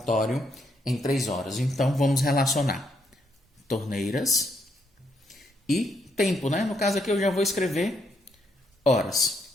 em 3 horas. Então vamos relacionar torneiras e tempo, né? No caso aqui eu já vou escrever horas,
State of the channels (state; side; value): normal; both; correlation 0.76